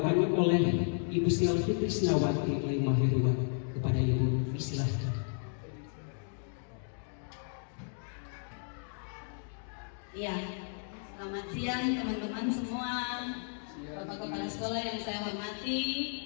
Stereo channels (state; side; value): silent; right; 55 dB below the other